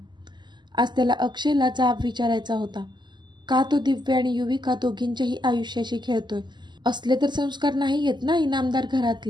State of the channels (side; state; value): left; late; 0.21 ms